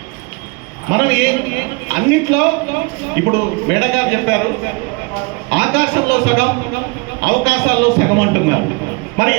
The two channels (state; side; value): quieter; left; 27.7 dB